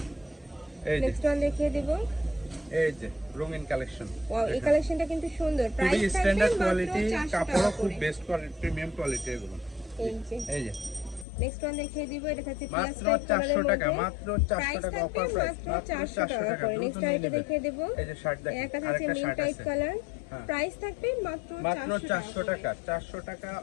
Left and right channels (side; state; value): right; drops out; at 11.2 s